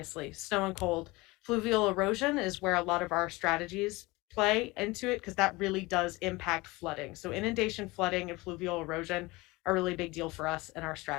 snow and cold. Fluvial erosion is where a lot of our strategies play into it, because that really does impact flooding. So inundation, flooding, and fluvial erosion are a really big deal for us and our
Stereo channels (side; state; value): right; quieter; 22.5 dB